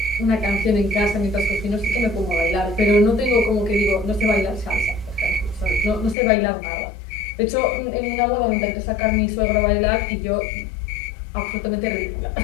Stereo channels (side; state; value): right; drops out; at 6.2 s